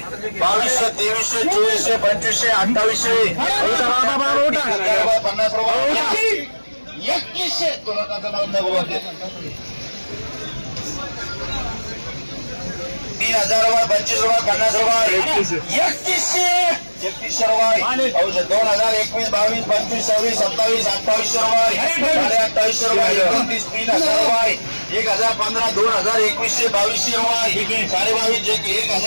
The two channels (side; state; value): both; inverted; correlation -1.00